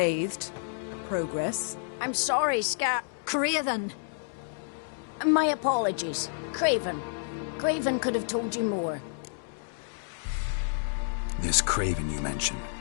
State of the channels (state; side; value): silent; right; digital silence